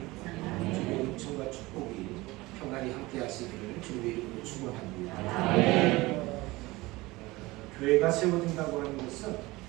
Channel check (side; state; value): left; quieter; 20.8 dB